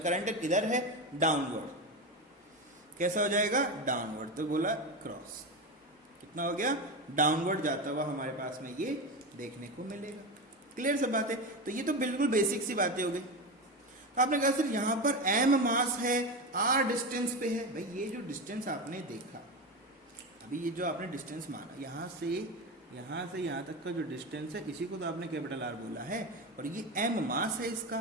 करंट किधर है डाउनवर्ड, कैसा हो जाएगा डाउनवर्ड, तो बोला क्रॉस, कितना हो गया डाउनवर्ड जाता हुआ हमारे पास में ये देखने को मिलेगा। क्लियर सब बात है, तो ये तो बिल्कुल बेसिक सी बातें हो गई। तो आपने कहा सर यहां पर m मास है, r डिस्टेंस पे है, भाई ये जो डिस्टेंस आपने देखा अभी, ये जो आपने डिस्टेंस माना यहां से यहां तक का जो डिस्टेंस है इसी को तो आपने कैपिटल R बोला है, और ये m मास है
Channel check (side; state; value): both; normal; correlation 0.19